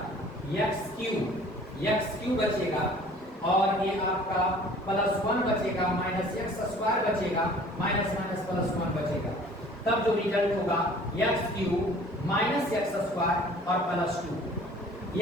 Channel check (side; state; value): both; normal; correlation 0.50